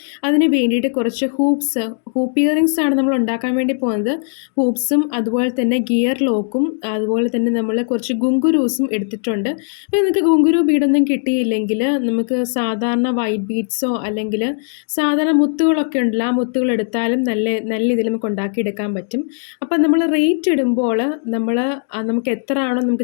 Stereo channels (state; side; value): silent; right; digital silence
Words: അതിന് വേണ്ടിയിട്ട് കുറച്ച് ഹൂപ്പ് ഇയറിങ്സ് ആണ് നമ്മൾ ഉണ്ടാക്കാൻ വേണ്ടി പോകുന്നത്. ഹൂപ്സും അതുപോലെ തന്നെ ഗിയർ ലോക്കും അതുപോലെ തന്നെ നമ്മൾ കുറച്ച് ഗുങ്കുരൂസും എടുത്തിട്ടുണ്ട്. അപ്പോൾ നിങ്ങൾക്ക് ഗുങ്കുരു ബീഡൊന്നും കിട്ടിയില്ലെങ്കിൽ നമുക്ക് സാധാരണ വൈറ്റ് ബീഡ്സോ അല്ലെങ്കിൽ സാധാരണ മുത്തുകളൊക്കെ ഉണ്ടല്ലോ, ആ മുത്തുകൾ എടുത്താലും നല്ല ഇതിൽ നമുക്ക് ഉണ്ടാക്കിയെടുക്കാൻ പറ്റും. അപ്പം നമ്മൾ റേറ്റ് ഇടുമ്പോൾ നമുക്ക് എത്ര ആണോ